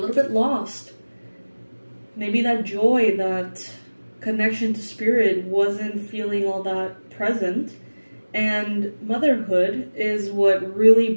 bit lost. Maybe that joy, that connection to spirit wasn't feeling all that present. And motherhood is what really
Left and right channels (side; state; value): both; inverted; correlation -1.00